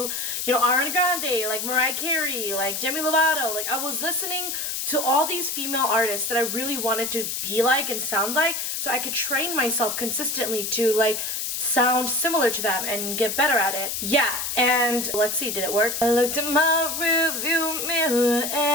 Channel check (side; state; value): left; noise; hiss, 3 dB below the sound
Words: Ariana Grande, like Mariah Carey, like Demi Lovato. Like I was listening to all these female artists that I really wanted to be like and sound like, so I could train myself consistently to like sound similar to them and get better at it. Yeah, and let's see, did it work? I looked at my rearview mirror